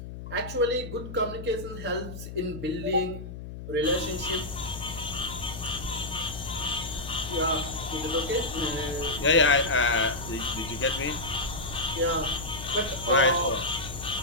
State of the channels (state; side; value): noise; left; hum, 10 dB below the sound